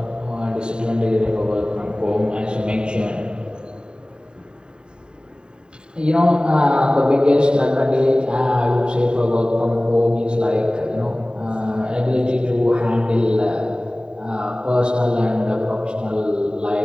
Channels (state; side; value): late; left; 0.049 ms